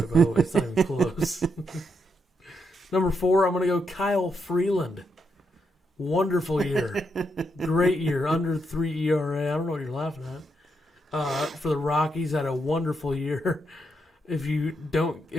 by the way. It's not even close. Number 4, I'm going to go Kyle Freeland. Wonderful year. Great year. Under 3 ERA. I don't know what you're laughing at. For the Rockies, had a wonderful year. If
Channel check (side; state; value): both; normal; correlation 0.80